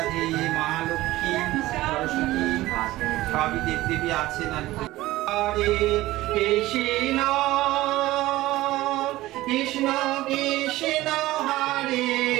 মহালক্ষ্মী, সরস্বতী, সবই দেবদেবী আছেন আর কি। হরে কৃষ্ণ কৃষ্ণ কৃষ্ণ হরে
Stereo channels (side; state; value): left; quieter; 17.2 dB